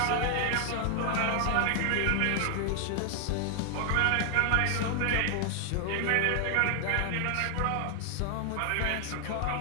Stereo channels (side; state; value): both; different; correlation 0.00